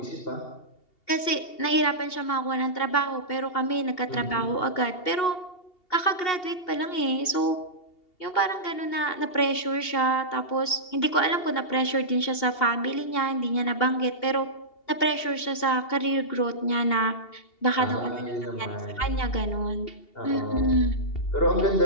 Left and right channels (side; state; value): right; late; 2.8 ms